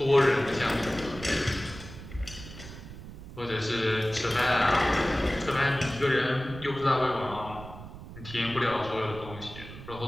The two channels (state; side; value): noise; right; rumble, 14 dB below the sound